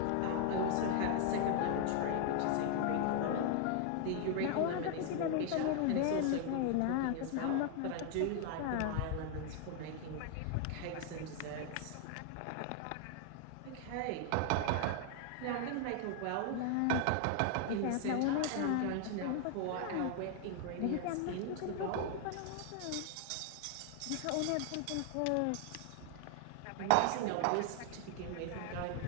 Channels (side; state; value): both; different; correlation 0.00